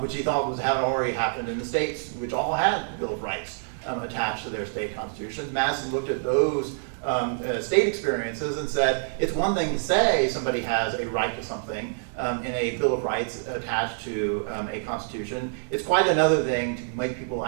he thought had already happened in the states, which all had the Bill of Rights attached to their state constitutions. Madison looked at those state experiences and said, it's one thing to say somebody has a right to something in a Bill of Rights attached to a constitution. It's quite another thing to make people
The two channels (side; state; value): left; silent; digital silence